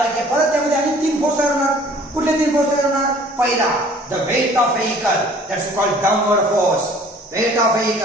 की परत त्यामध्ये आणि 3 फोर्स तयार होणार कुठले 3 फोर्स तयार होणार पहिला the weight of vehicle that's called downward force weight of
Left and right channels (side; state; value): both; normal; correlation 0.52